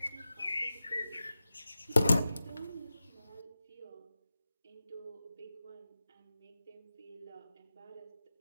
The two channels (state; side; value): inverted; both; correlation -0.94